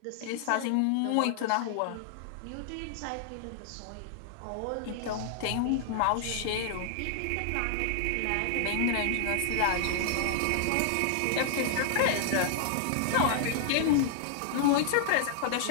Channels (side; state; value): both; different; correlation -0.01